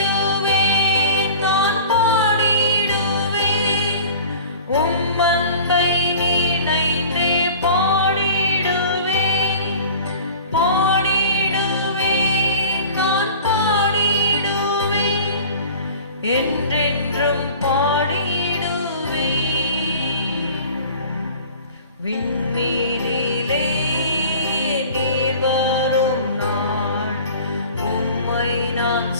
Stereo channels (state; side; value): inverted; both; correlation -0.42